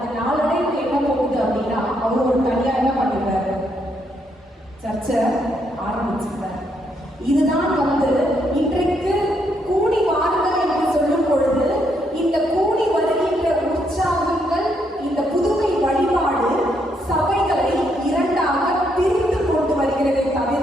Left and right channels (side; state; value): both; normal; correlation 0.75